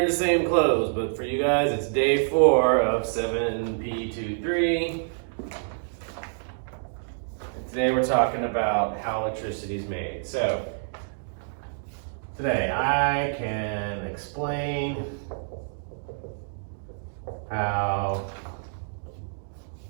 the same clothes, but for you guys, it's day 4 of 7.P.2.3. And today we're talking about how electricity is made. So, today I can explain how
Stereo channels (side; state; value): left; silent; digital silence